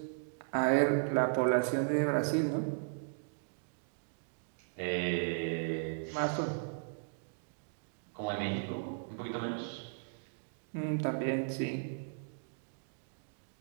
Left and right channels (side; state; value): left; silent; digital silence